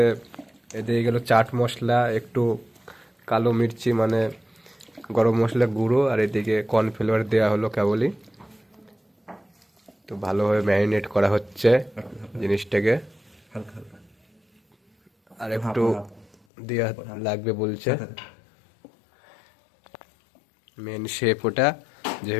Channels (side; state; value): right; drops out; at 16.4 s